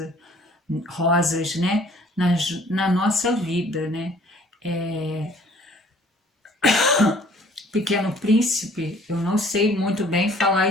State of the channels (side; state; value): both; normal; correlation 0.55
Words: né? Na nossa vida, né? Pequeno Príncipe, eu não sei muito bem falar